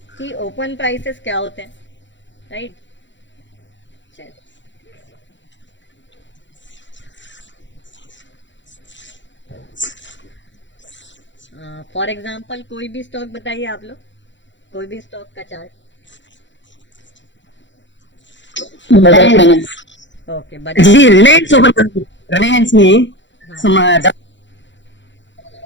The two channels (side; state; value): right; late; 0.54 ms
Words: कि ओपन प्राइसेस क्या होते हैं, राइट। चलिए, फॉर एग्जांपल कोई भी स्टॉक बताइए आप लोग, कोई भी स्टॉक का chart. Bajaj finance. Okay, Bajaj ji, finance. Reliance open Reliance में हाँ। some